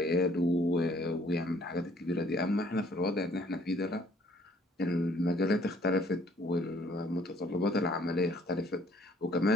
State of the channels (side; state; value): both; normal; correlation 0.61